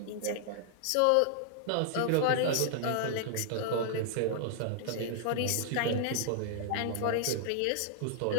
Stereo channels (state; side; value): different; both; correlation 0.00